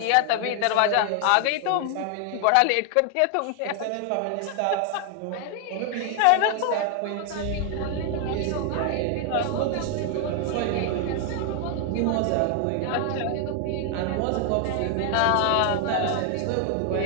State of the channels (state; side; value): different; both; correlation 0.00